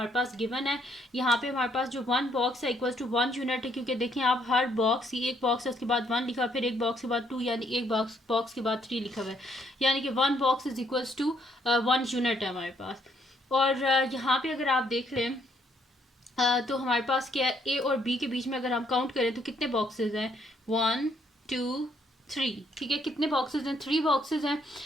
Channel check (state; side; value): normal; both; correlation 0.70